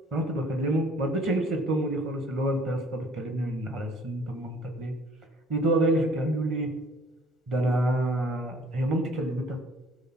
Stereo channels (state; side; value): normal; both; correlation 0.56